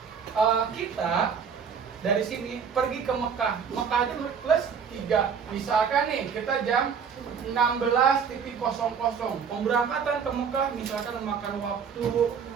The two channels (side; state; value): left; quieter; 6.6 dB